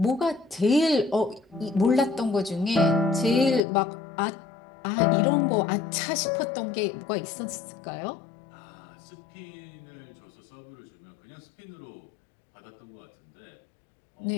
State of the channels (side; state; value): right; drops out; at 3.6 s